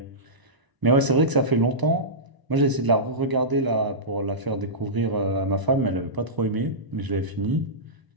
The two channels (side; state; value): left; late; 1.0 ms